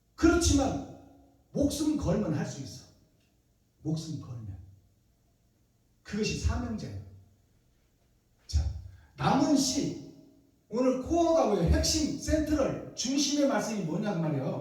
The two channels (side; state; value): both; identical; correlation 1.00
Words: 그렇지만 목숨 걸면 할 수 있어. 목숨 걸면. 그것이 사명자예요. 자, 남은 씨, 오늘 코어가 뭐예요? 핵심, 센트럴, 중심의 말씀이 뭐냐고